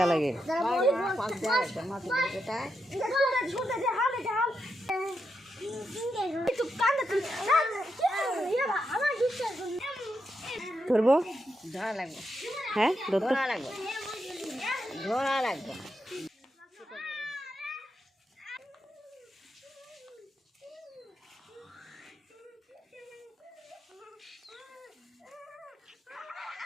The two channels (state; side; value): normal; both; correlation 0.84